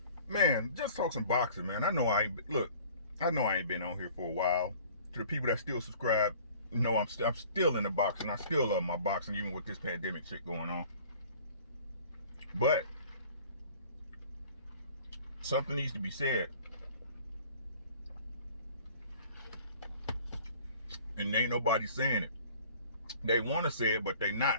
Man, just talk some boxing, man. I know I ain't been on here for a while. To the people that still subscribe, I'm still in the boxing. I still love my boxing, even with this pandemic shit going on. But something needs to be said, and ain't nobody saying it. They want to say it, but they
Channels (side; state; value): both; inverted; correlation -0.50